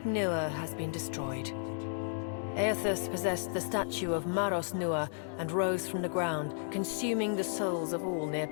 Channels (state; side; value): silent; right; digital silence